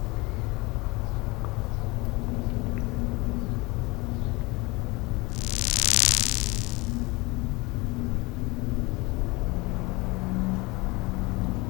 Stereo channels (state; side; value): quieter; right; 23.6 dB